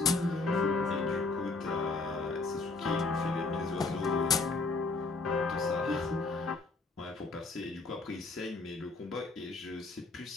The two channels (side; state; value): right; quieter; 3.6 dB